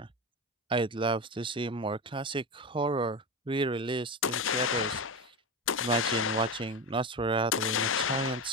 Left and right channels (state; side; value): normal; both; correlation 0.20